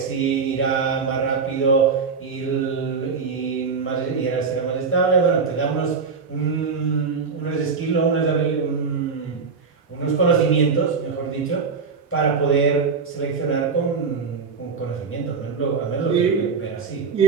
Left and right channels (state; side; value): quieter; left; 5.2 dB